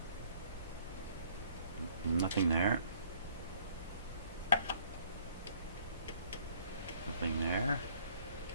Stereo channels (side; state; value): both; inverted; correlation -0.59